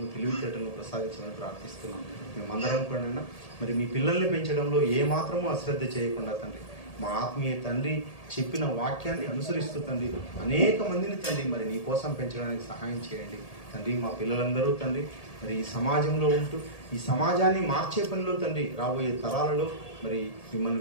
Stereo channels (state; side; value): late; right; 1.8 ms